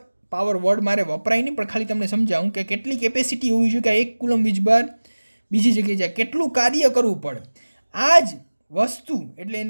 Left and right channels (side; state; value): both; inverted; correlation -1.00